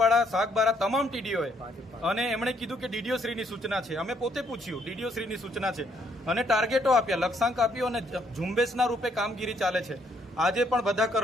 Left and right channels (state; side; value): normal; both; correlation 0.70